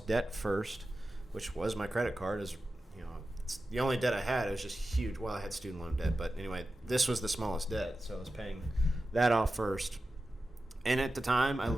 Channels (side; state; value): both; normal; correlation 0.93